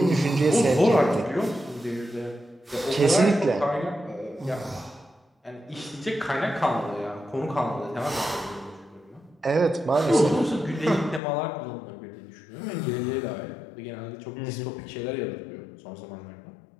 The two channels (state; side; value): drops out; right; at 11.2 s